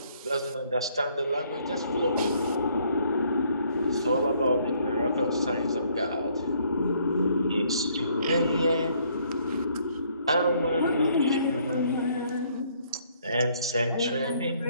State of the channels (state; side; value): inverted; both; correlation -0.66